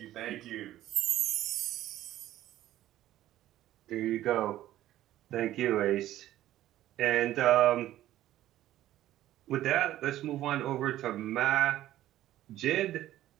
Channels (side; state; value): left; quieter; 13.8 dB